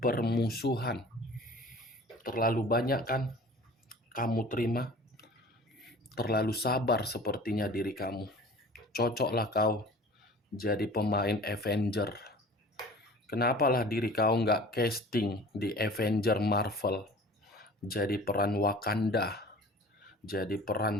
permusuhan. Terlalu banyak kan kamu terima? Terlalu sabar sepertinya diri kamu. Cocoklah kau jadi pemain Avenger. Kenapalah diri kau nggak casting di Avenger Marvel, jadi peran Wakanda, jadi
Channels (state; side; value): normal; both; correlation 0.44